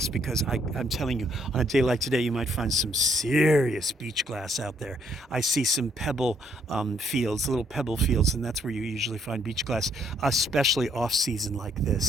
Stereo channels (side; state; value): both; normal; correlation 0.69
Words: because I'm telling you, on a day like today, you might find some serious beach glass out there. I see some pebble fields, little pebble fields, and that's where you usually find beach glass, especially off season like